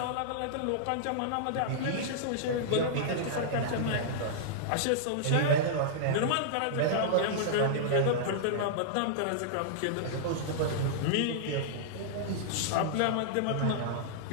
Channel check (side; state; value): both; different; correlation -0.02